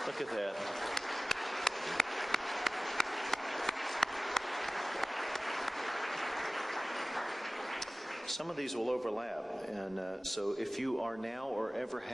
Look at that. Some of these will overlap, and so if you are now or ever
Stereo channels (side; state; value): both; normal; correlation 0.98